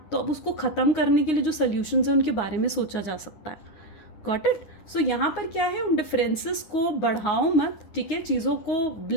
तो अब उसको ख़त्म करने के लिए जो सोल्यूशंस हैं उनके बारे में सोचा जा सकता है। Got it. सो यहाँ पर क्या है, उन डिफरेंसेस को बढ़ाओ मत, ठीक है। चीज़ों को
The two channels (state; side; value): late; right; 9.6 ms